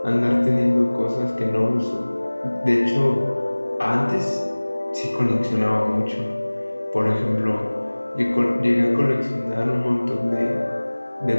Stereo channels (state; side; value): inverted; both; correlation -1.00